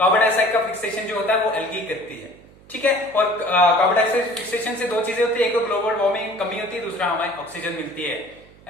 डाइऑक्साइड का फिक्सेशन जो होता है वो एल्गी करती है। ठीक है, और कार्बन डाइऑक्साइड फिक्सेशन से दो चीजें होती है, एक तो ग्लोबल वार्मिंग कमी होती है, दूसरा हमें ऑक्सीजन मिलती है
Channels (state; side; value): noise; right; hum, 25 dB below the sound